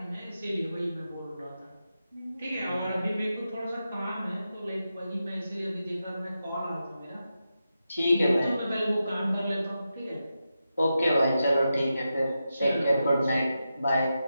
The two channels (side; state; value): both; inverted; correlation -0.89